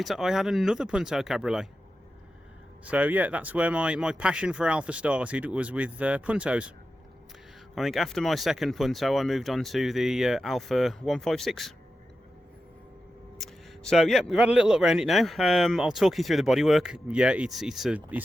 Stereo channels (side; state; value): both; normal; correlation 0.91